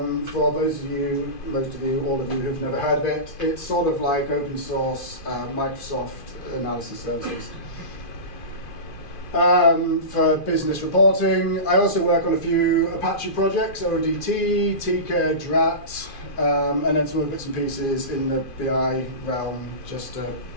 for those of you, most of you, all of you who've never heard of it, it's sort of like open source Microsoft analysis services. For business reporting, I also work on a few Apache projects, ODT, Tika, Drat, and then some other bits and pieces in the BI realm, just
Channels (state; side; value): late; right; 2.5 ms